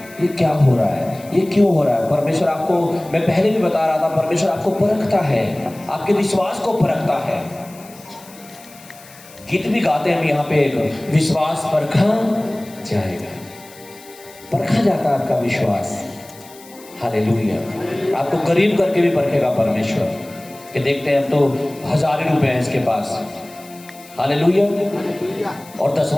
ये क्या हो रहा है, ये क्यों हो रहा है। परमेश्वर आपको, मैं पहले भी बता रहा था, परमेश्वर आपको परखता है, आपके विश्वास को परखता है। गीत भी गाते हैं हम यहाँ पे, एक विश्वास परखा जाएगा। परखा जाता है आपका विश्वास। हालेलुया। आपको करीब करके भी परखेगा परमेश्वर, कि देखते हैं तो 1000 ही रुपए हैं इसके पास। हालेलुया। और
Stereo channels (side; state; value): left; noise; hiss, 21 dB below the sound